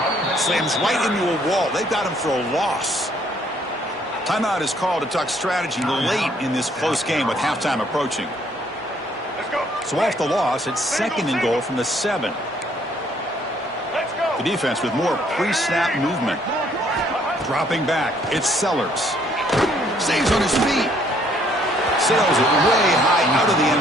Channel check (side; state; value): both; normal; correlation 0.65